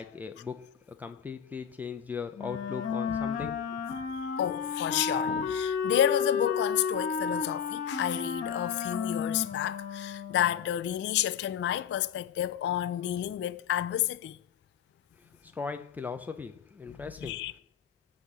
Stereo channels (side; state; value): right; quieter; 8.4 dB